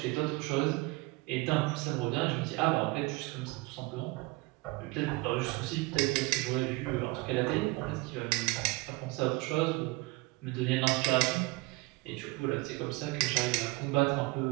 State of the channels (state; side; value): quieter; left; 24.1 dB